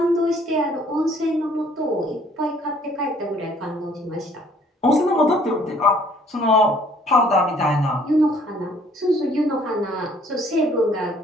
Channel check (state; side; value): normal; both; correlation 0.60